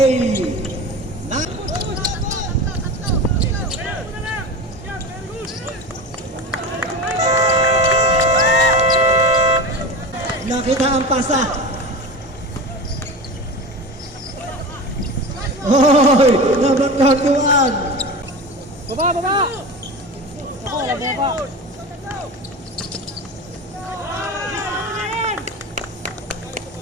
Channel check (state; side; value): normal; both; correlation 0.28